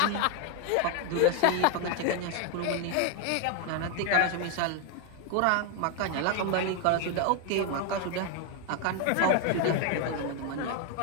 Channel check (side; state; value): both; different; correlation 0.01